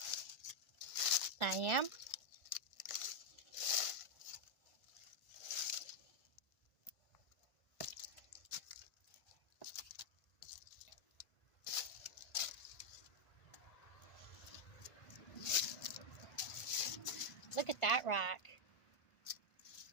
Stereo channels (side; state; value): right; late; 1.5 ms